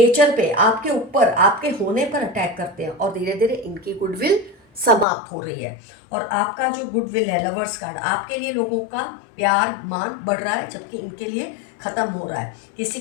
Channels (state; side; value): drops out; right; at 5.1 s